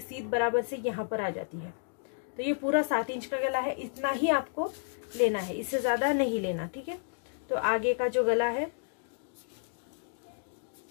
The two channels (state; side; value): silent; right; digital silence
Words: बराबर से यहाँ पर आ जाती है। तो ये पूरा 7 इंच का गला है, इतना ही आपको लेना है, इससे ज्यादा नहीं लेना, ठीक है। तो आगे का जो गला है